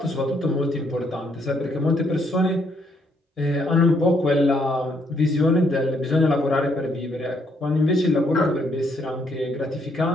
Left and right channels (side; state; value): both; normal; correlation 0.72